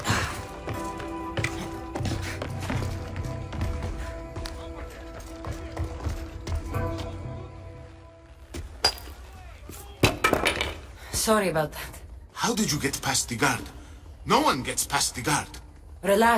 Sorry about that. How did you get past the guard? No one gets past the guard.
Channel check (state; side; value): identical; both; correlation 1.00